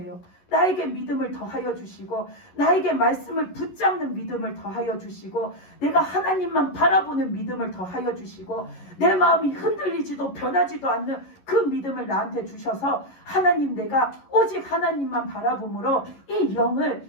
나에게 믿음을 더하여 주시고 나에게 말씀을 붙잡는 믿음을 더하여 주시고 내가 하나님만 바라보는 믿음을 더하여 주시고 내 마음이 흔들리지도 변하지도 않는 그 믿음을 나한테 주셔서 하나님, 내가 오직 하나님만 바라봄으로 이 영을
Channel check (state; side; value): late; right; 11 ms